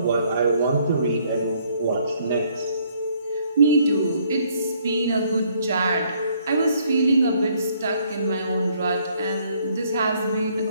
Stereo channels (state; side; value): inverted; both; correlation -0.66